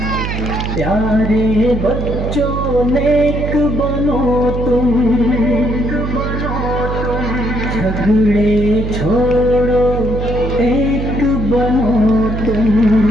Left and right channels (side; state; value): right; noise; hum, 3 dB below the sound